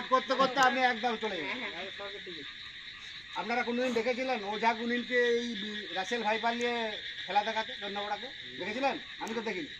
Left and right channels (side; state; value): right; noise; rumble, 24 dB below the sound